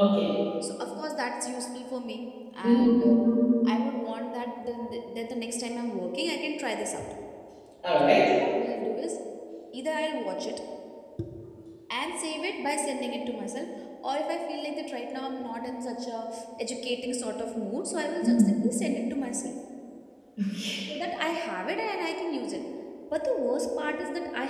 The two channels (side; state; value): both; identical; correlation 1.00